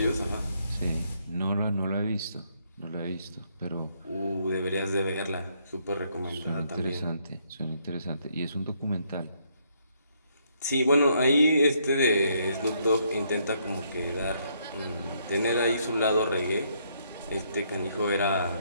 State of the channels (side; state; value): both; inverted; correlation -0.72